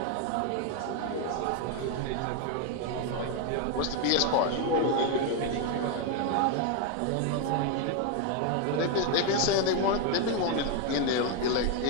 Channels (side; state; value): both; different; correlation 0.01